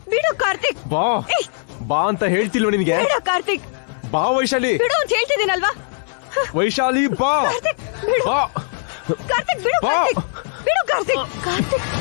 ಬಿಡು ಕಾರ್ತಿಕ್. ಬಾ ಬಾ ಅಂತ ಹೇಳ್ತಿಲ್ವ ನಿನ್ಗೆ? ಬಿಡು ಕಾರ್ತಿಕ್. ಬಾ ವೈಶಾಲಿ. ಬಿಡು ಅಂತ ಹೇಳ್ತಿದ್ದೀನಲ್ವಾ? ವೈಶಾಲಿ ಬಾ. ಕಾರ್ತಿಕ್ ಬಿಡು. ಬಾ ಕಾರ್ತಿಕ್ ಬಿಡು. ಬಾ. ಕಾರ್ತಿಕ್ ಬಿಡು. ಕಾರ್ತಿಕ್ ಕಾರ್ತಿಕ್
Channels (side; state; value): right; silent; digital silence